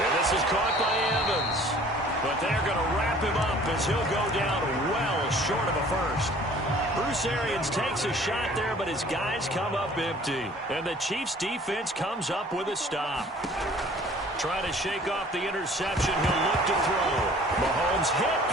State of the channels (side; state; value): both; normal; correlation 0.51